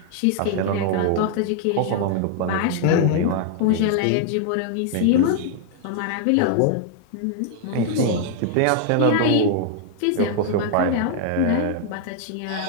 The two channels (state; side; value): different; both; correlation -0.01